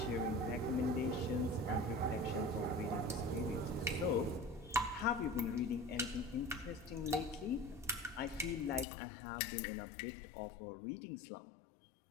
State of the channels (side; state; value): right; drops out; at 8.8 s